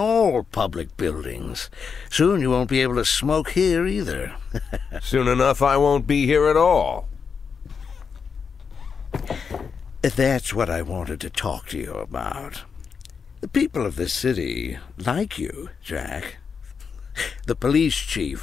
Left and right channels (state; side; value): quieter; right; 6.0 dB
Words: public buildings. Soon you won't be able to smoke here either. Soon enough I won't be here at all. That's what I wanted to talk to you about. The people of this city like you, Jack. The police chief